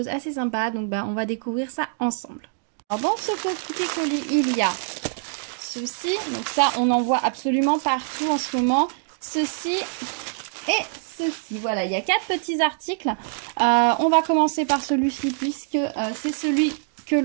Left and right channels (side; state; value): left; silent; digital silence